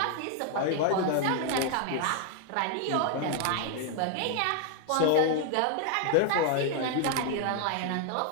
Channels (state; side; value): different; both; correlation 0.00